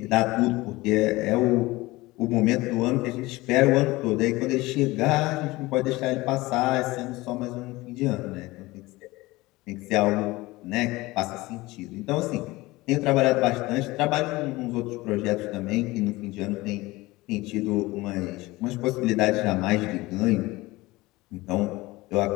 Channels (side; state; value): right; quieter; 20.4 dB